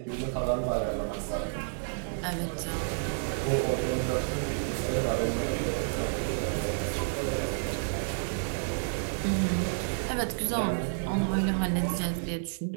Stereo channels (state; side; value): silent; left; 58 dB below the other